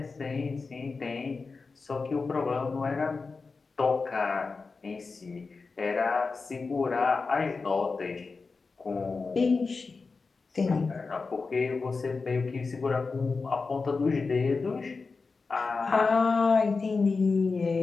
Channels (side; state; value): right; quieter; 4.3 dB